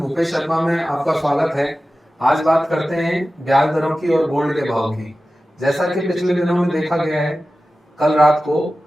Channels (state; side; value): normal; both; correlation 0.95